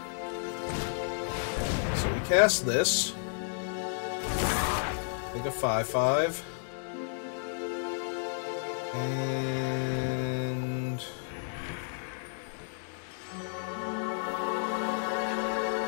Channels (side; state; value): right; silent; digital silence